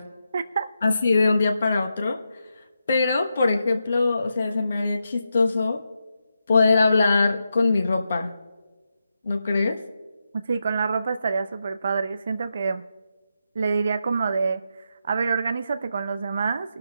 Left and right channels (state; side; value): inverted; both; correlation -0.86